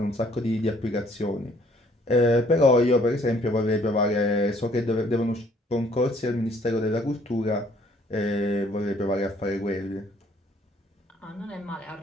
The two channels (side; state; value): both; normal; correlation 0.61